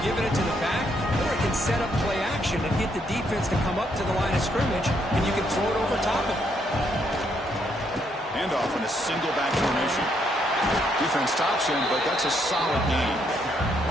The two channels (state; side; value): normal; both; correlation 0.74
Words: giving it to the back, or it can set up play action and get the defense to come up to the line of scrimmage, and you can throw it over top of them. Handoff in a single back formation. Defense stops him, but that's a solid game.